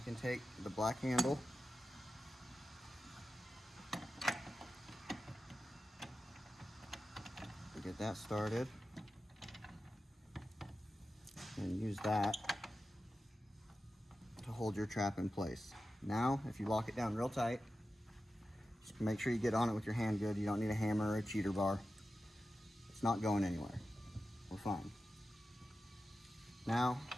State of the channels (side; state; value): both; normal; correlation 0.93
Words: can take the black handle to get that started, and use that to hold your trap in place. Now, if you lock it down real tight, just make sure you get on it with your hand good. You don't need a hammer or a cheater bar. It's not going anywhere. We're fine. Now,